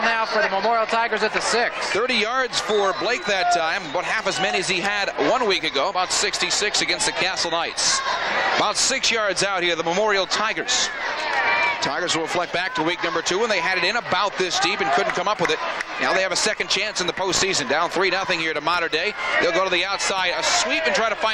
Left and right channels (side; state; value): both; identical; correlation 1.00